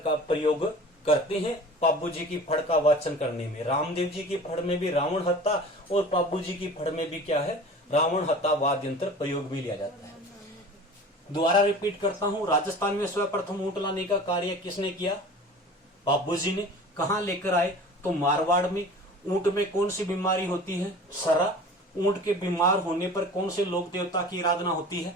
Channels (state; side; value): normal; both; correlation 0.40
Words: प्रयोग करते हैं पाब्बू जी की फड़ का वाचन करने में। रामदेव जी की फड़ में भी रावण हत्ता और पाब्बू जी की फड़ में भी क्या है, रावण हत्ता वाद्य यंत्र प्रयोग भी लिया जाता है। दोबारा रिपीट करता हूं, राजस्थान में सर्वप्रथम ऊंट लाने का कार्य किसने किया, पाब्बू जी ने। कहां लेकर आए, तो मारवाड़ में। ऊंट में कौन सी बीमारी होती है, सरा। ऊंट के बीमार होने पर कौन से लोक देवता की आराधना होती है,